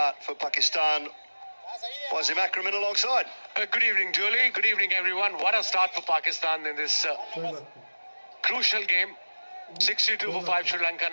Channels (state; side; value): inverted; both; correlation -1.00